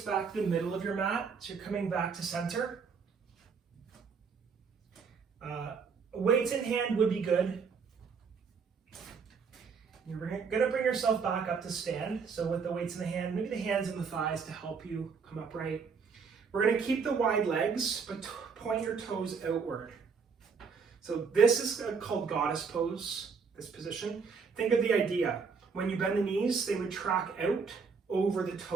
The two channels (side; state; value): left; quieter; 5.6 dB